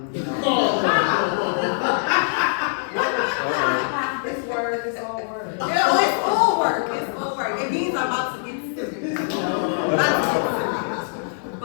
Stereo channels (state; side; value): silent; right; digital silence